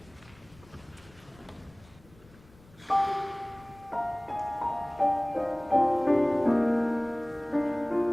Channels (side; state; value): left; noise; rumble, 26 dB below the sound